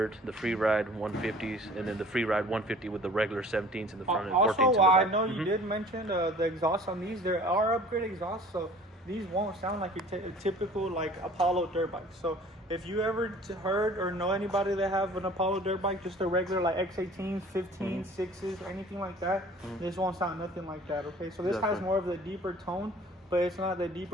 the Freeride 150s, and then the Freeride 150 with the regular 17s in the front and 14s in the back. Also, I know you did mention the exhaust on these. There are upgrade exhausts, so these won't sound like a typical like Apollo dirt bike. So if you ever heard or know anybody that have an Apollo dirt bike, just a regular like X18, 15, 6s, anything like that, this won't sound nothing like that, okay? So this has more of the deeper tone, but it's not the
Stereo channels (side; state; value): both; normal; correlation 0.48